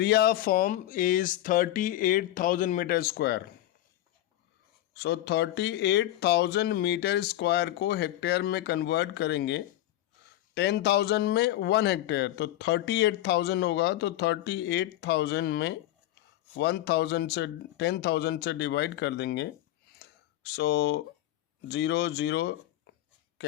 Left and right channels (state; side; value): quieter; right; 14.1 dB